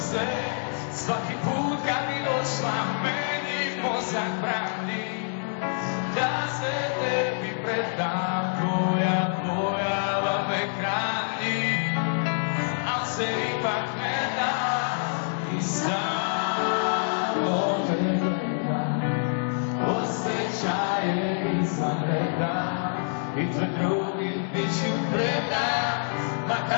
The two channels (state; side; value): silent; right; digital silence